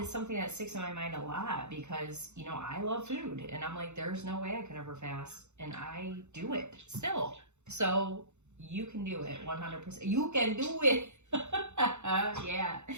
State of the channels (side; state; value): left; late; 0.83 ms